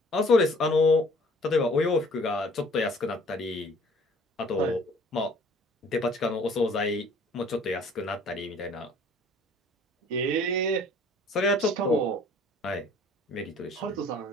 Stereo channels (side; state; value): both; normal; correlation 0.55